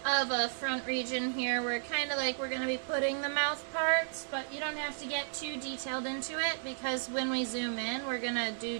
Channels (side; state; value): left; silent; digital silence